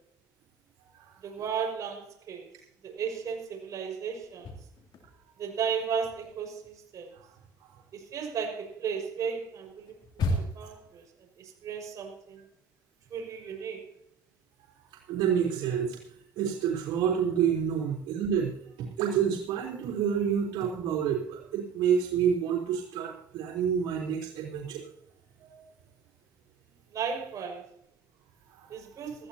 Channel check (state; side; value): quieter; left; 6.7 dB